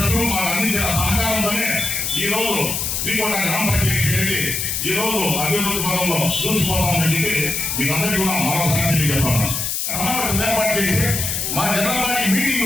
మాకు అందించిన సహకారంతోనే ఈ రోజు వీకోట గ్రామ పంచాయతీ అనేది ఈ రోజు అభివృద్ధి పదంలో చూసిపోతామని చెప్పి మీకు అందరికీ కూడా మరొకసారి చెప్తాను. సమావేశం ఏర్పాటు చేసి మా జనరల్ బాడీ మీటింగ్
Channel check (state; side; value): noise; left; hiss, 1 dB below the sound